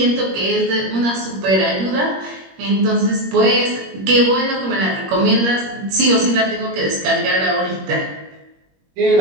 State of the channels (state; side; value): late; left; 21 ms